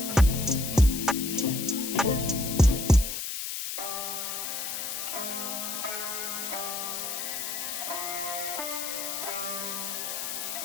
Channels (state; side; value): noise; left; hiss, 4 dB below the sound